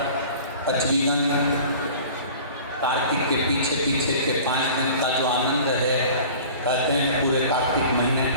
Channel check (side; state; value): both; inverted; correlation -0.43